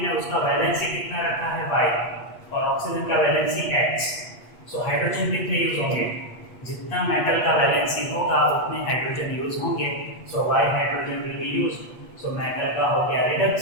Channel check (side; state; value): right; late; 8.4 ms